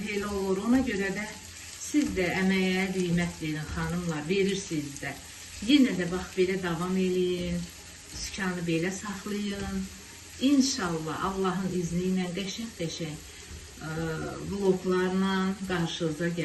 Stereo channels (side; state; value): both; identical; correlation 1.00